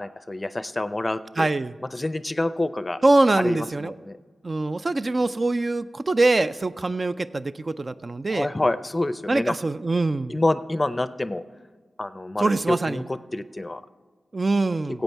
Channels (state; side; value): normal; both; correlation 0.97